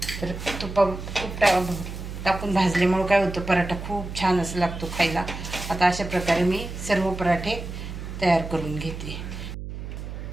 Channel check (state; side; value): noise; right; hum, 8 dB below the sound